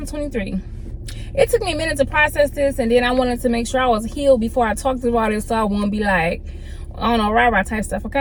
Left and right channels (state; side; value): identical; both; correlation 1.00